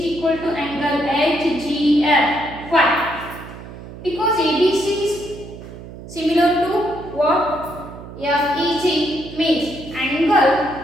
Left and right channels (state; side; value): noise; right; hum, 14 dB below the sound